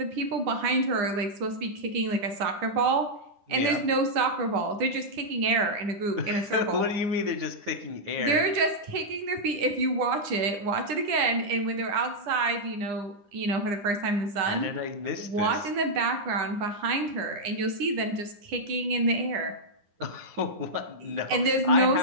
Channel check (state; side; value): late; left; 9.9 ms